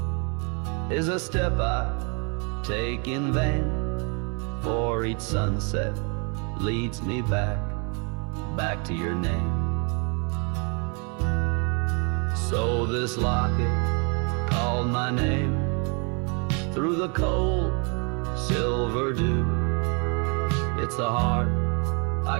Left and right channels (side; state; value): left; quieter; 35.1 dB